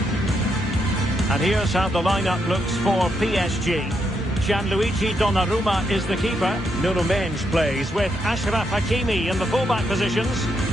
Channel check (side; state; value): both; normal; correlation 0.80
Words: And here's how the lineup looks for PSG. Gianluigi Donnarumma is the keeper. Nuno Mendes plays with Achraf Hakimi in the fullback positions.